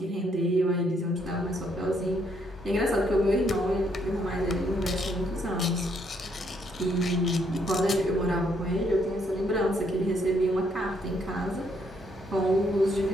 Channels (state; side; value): normal; both; correlation 0.72